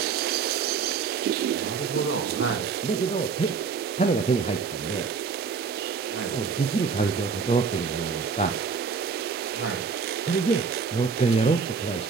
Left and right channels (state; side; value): quieter; left; 5.5 dB